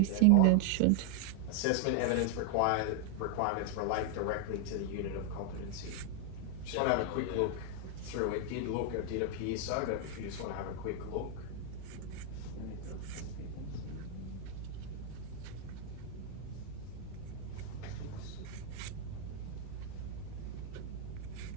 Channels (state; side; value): different; both; correlation 0.00